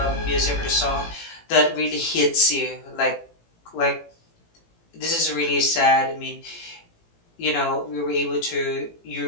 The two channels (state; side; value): late; right; 18 ms